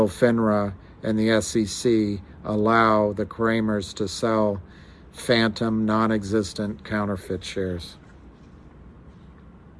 FINRA and the SEC allow the Kramers to sell phantom, non-existent, counterfeit shares?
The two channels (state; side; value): identical; both; correlation 1.00